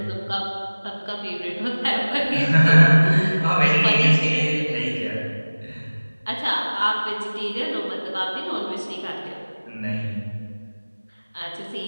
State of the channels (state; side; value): inverted; both; correlation -1.00